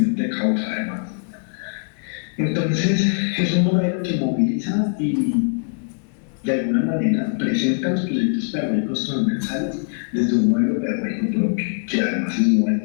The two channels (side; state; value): right; silent; digital silence